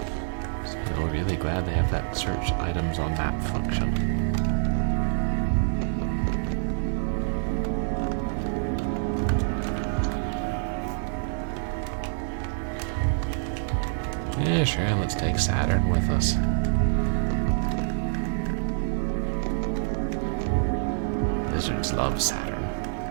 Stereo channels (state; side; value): silent; left; 60 dB below the other